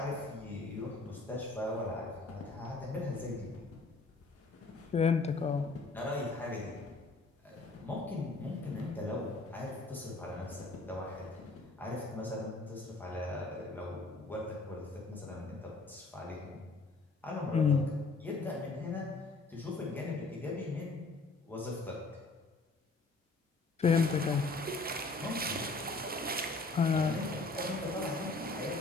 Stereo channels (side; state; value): right; quieter; 3.5 dB